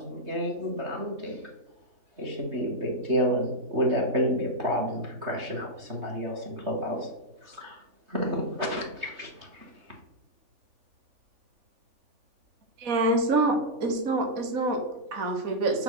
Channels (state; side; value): late; left; 3.5 ms